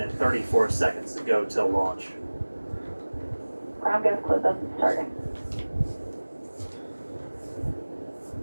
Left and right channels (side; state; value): both; inverted; correlation -1.00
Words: 34 seconds to go till launch. Ground gas close-up is starting.